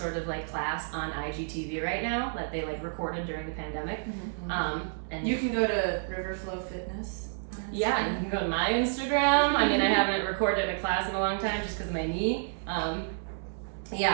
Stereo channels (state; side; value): silent; left; 58 dB below the other